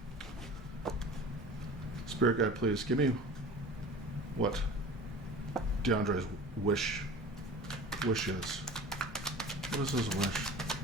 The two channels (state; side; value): normal; both; correlation 0.39